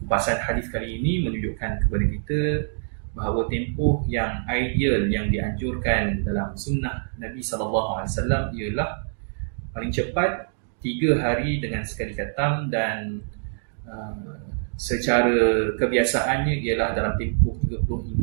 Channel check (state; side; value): silent; left; digital silence